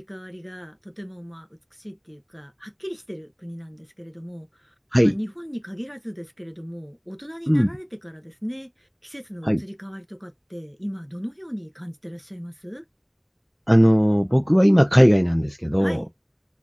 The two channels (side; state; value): both; identical; correlation 1.00